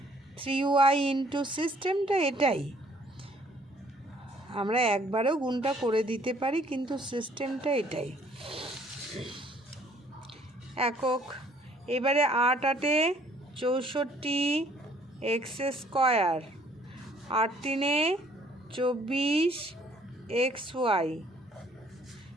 3y ইন্টু, সিস্টেমটা এটাই, আমরা একবারেও গুণটা করে দিতে পারি, কিন্তু সিস্টেমটা এটাই। একক। এবারে 8 × 8 = 64 x², 8 × 3 = 24 xy,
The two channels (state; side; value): normal; both; correlation 0.60